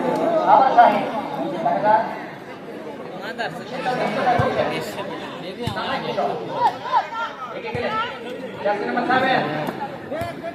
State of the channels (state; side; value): identical; both; correlation 1.00